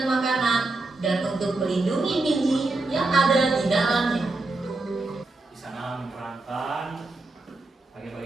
makanan dan untuk melindungi biji yang ada di dalamnya. Di sana menerangkan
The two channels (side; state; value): left; quieter; 3.2 dB